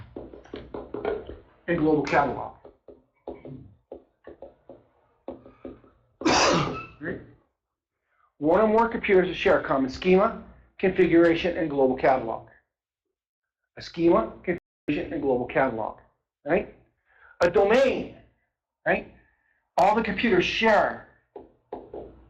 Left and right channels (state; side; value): identical; both; correlation 1.00